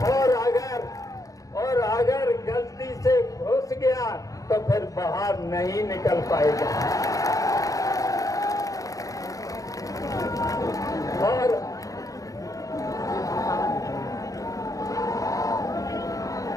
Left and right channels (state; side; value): late; right; 0.17 ms